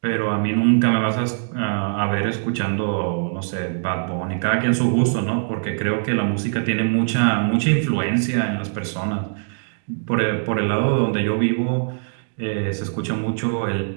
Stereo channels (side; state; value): left; silent; digital silence